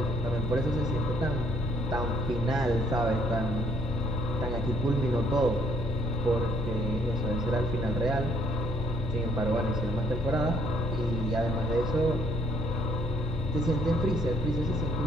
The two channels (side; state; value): both; normal; correlation 0.67